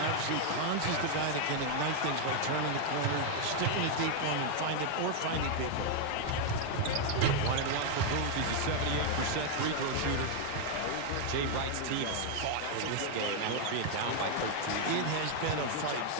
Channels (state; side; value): different; both; correlation 0.00